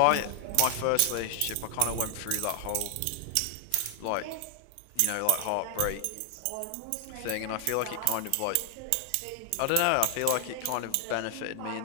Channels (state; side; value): different; both; correlation 0.00